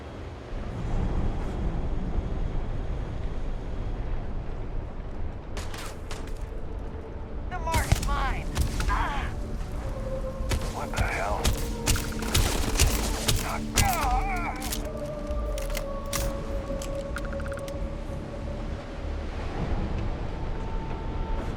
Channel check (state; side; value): identical; both; correlation 1.00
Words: The mark's mine. Ah! What the hell?